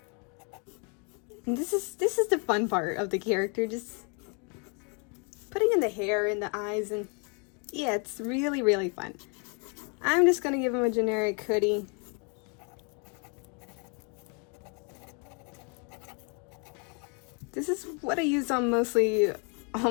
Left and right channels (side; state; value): right; quieter; 35.9 dB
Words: And this is the fun part of the character, just putting in the hair and the eyes, and yeah, it's really, really fun. I'm just gonna give him a generic hoodie. This is what I use on mostly all